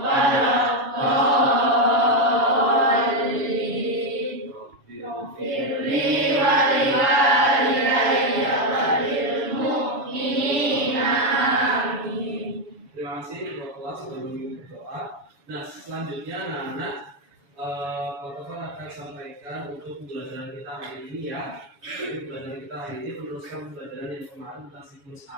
Firli wa liwalidayya wa lil mu'minina amin. Terima kasih ketua kelas sudah memimpin berdoa. Nah, selanjutnya anak-anak Pak Topan akan sampaikan untuk pembelajaran kita hari ini ya. Jadi pembelajaran kita hari ini meneruskan pembelajaran yang kemarin tentang siklus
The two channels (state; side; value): late; left; 7.2 ms